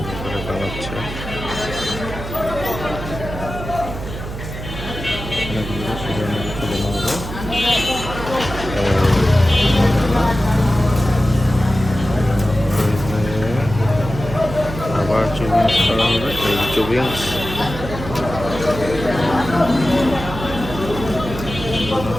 বানাচ্ছে, শিরার মধ্যে তুলে নেবো। আবার চুবিংস করা হবে, এই চুবিংস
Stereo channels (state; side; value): noise; right; hum, 9 dB below the sound